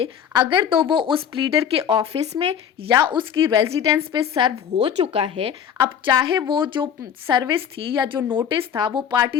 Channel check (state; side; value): quieter; right; 8.4 dB